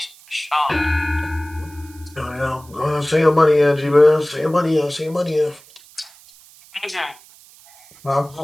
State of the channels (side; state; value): right; noise; hiss, 25 dB below the sound